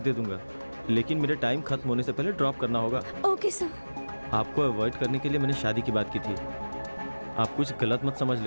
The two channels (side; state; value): both; inverted; correlation -1.00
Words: दे दूंगा, लेकिन मेरे टाइम खत्म होने से पहले ड्रॉप करना होगा। Okay sir. आपको अवॉइड करने के लिए मैंने शादी की बात की थी, आप कुछ गलत मत समझ